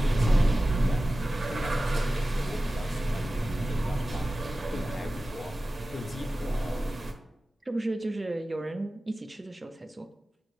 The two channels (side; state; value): both; normal; correlation 0.96